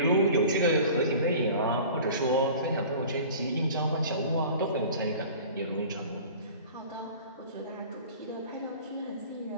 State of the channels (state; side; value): inverted; both; correlation -0.42